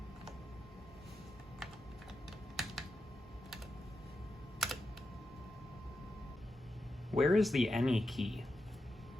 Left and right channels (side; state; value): both; normal; correlation 0.88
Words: Where is the any key?